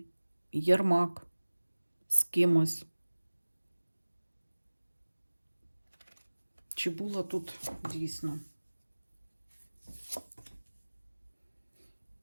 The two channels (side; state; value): both; inverted; correlation -1.00